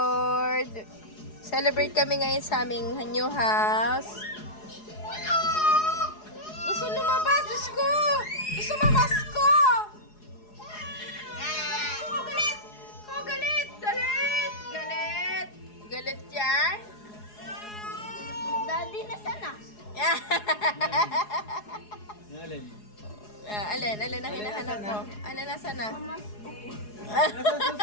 Celebrate kami ngayon sa aming new house. Gusto lumabas, Diyos ko! Gusto mamasko! Oh, galit! Oh, galit! Galit! Galit! Galit yan? Daddy, nasaan na? Alin? Alin ang hinahanap mo? Ano nasa na? Nasa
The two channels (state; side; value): late; right; 4.8 ms